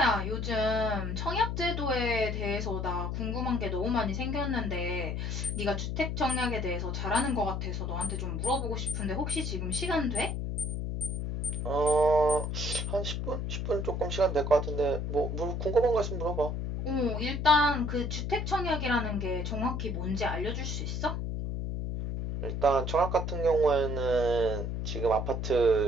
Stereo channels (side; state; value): left; noise; hum, 2 dB below the sound